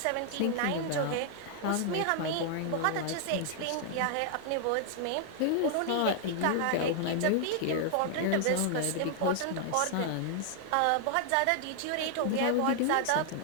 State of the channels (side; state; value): both; different; correlation 0.00